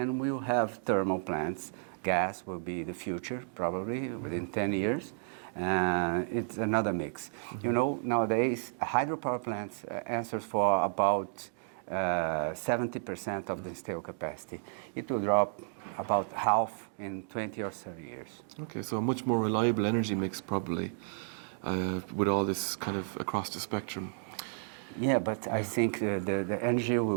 we'll have thermal plants. Gas will be the future, probably within 10 years. It's another mix. Mm-hmm. Nowadays, hydropower plants answers for about 70% of the installed capacity. It will drop about half in 20 or 30 years. Okay, so a much more reliable energy mix probably with all this kind of across the spectrum. Yeah, but I think the energy will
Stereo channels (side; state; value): left; silent; digital silence